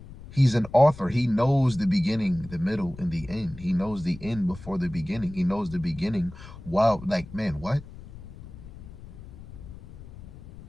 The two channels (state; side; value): noise; left; rumble, 16 dB below the sound